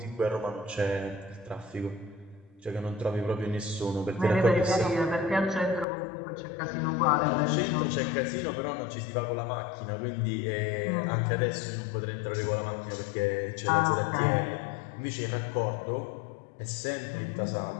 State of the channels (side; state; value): right; drops out; at 5.9 s